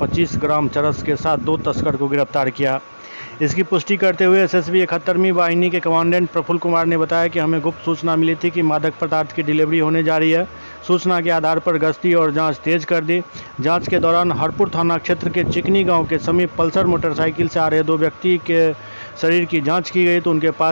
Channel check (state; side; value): inverted; both; correlation -1.00